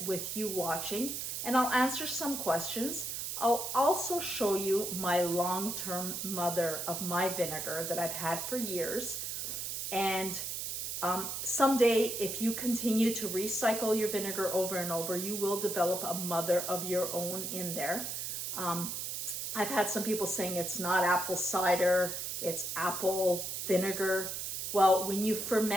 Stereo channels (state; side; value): noise; right; hiss, 4 dB below the sound